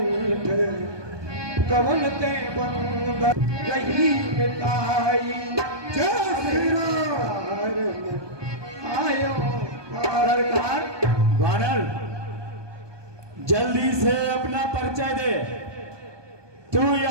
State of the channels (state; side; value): late; left; 1.2 ms